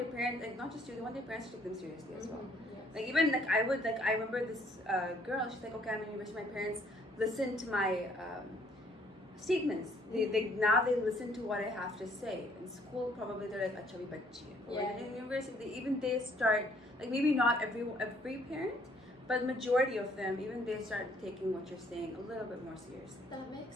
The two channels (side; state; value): both; normal; correlation 0.63